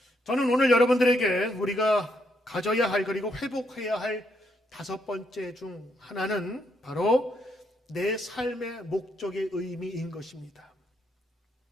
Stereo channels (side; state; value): both; normal; correlation 0.76